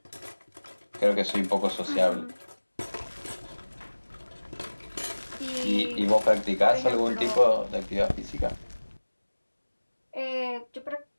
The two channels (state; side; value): inverted; both; correlation -1.00